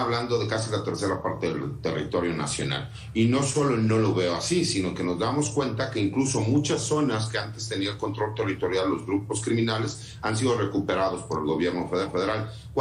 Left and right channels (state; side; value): identical; both; correlation 1.00